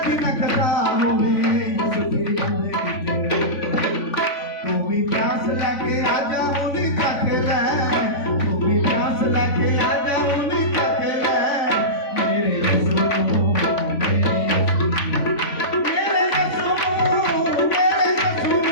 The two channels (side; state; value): right; late; 3.5 ms